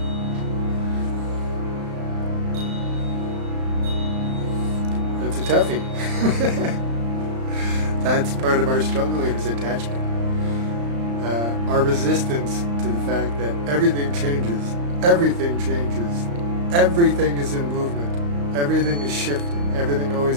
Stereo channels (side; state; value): left; late; 35 ms